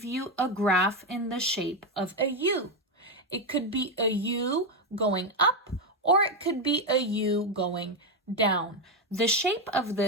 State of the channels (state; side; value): normal; both; correlation 0.08